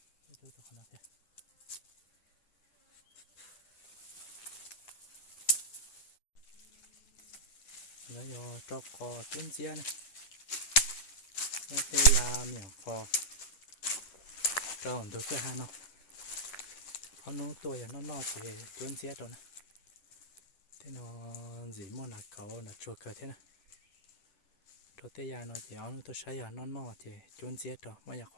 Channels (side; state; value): right; late; 10 ms